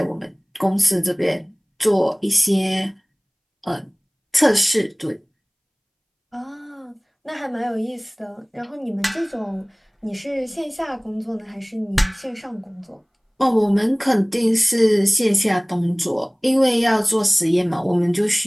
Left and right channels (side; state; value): both; identical; correlation 1.00